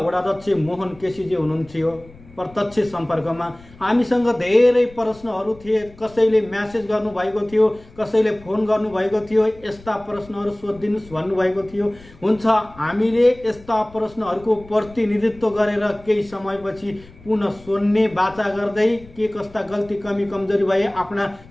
मोहन केसीजी हुनुहुन्थ्यो प्रत्यक्ष सम्पर्कमा। हामीसँग धेरै प्रश्नहरू थिए, कसैले म्यासेज गर्नुभएको थियो, कसैले फोन गर्नुभएको थियो, यस्ता प्रश्नहरू सोधिदिनुहोस् भन्नुभएको थियो। हुन्छ, हामीले यस्ता प्रश्नहरूको प्रतिनिधित्व गरेर केही समयपछि पुनः सोध्ने बाचा गर्दै के कस्ता गल्ती कमी कमजोरी भए आफ्ना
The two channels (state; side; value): noise; left; rumble, 22 dB below the sound